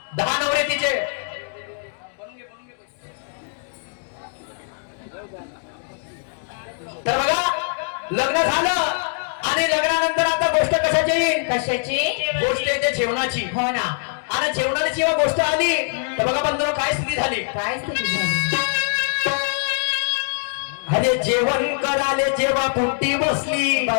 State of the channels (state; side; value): silent; right; digital silence